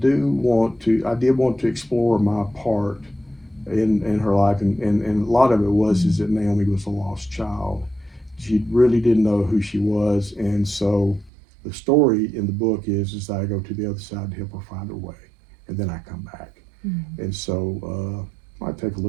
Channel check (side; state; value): left; drops out; at 11.3 s